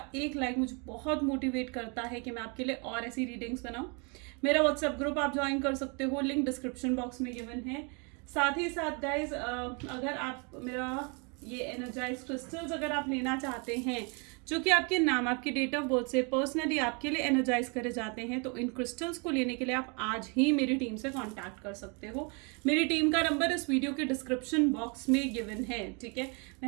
एक लाइक मुझे बहुत मोटिवेट करता है कि मैं आपके लिए और ऐसी रीडिंग्स बनाऊं। मेरा व्हाट्सएप ग्रुप आप ज्वाइन कर सकते हो, लिंक डिस्क्रिप्शन बॉक्स में गिवन है। साथ ही साथ गाइज, अगर आप मेरा ये एनर्जाइज क्रिस्टल्स अगर आप लेना चाहते हैं जो कि आपके नाम, आपकी डेट ऑफ बर्थ से पर्सनली आपके लिए एनर्जाइज करे जाते हैं, तो इन क्रिस्टल्स को लेने के लिए आप आज ही मेरी टीम से कांटेक्ट कर सकते हो। मेरी टीम का नंबर इस वीडियो के डिस्क्रिप्शन बॉक्स में गिवन है, ठीक है।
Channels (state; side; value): quieter; left; 33.9 dB